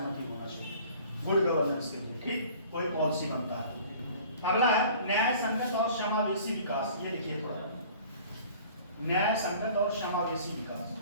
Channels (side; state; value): both; inverted; correlation -0.48